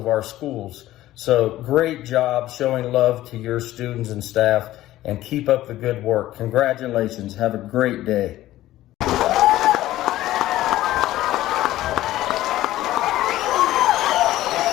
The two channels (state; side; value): quieter; right; 15.1 dB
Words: our schools. So great job showing love to your students and staff, and keep up the good work. Congratulations. Have a great day.